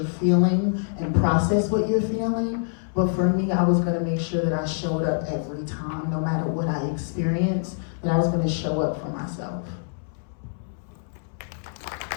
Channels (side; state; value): right; silent; 62 dB below the other